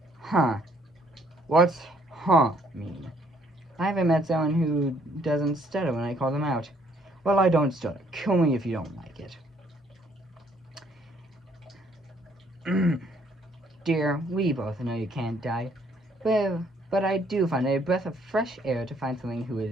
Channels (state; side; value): normal; both; correlation 0.65